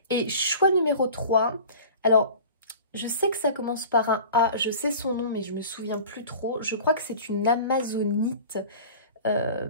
Et choix numéro 3, alors je sais que ça commence par un A, je sais son nom mais je me souviens plus trop. Je crois que c'est une amazonite,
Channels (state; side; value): inverted; both; correlation -0.40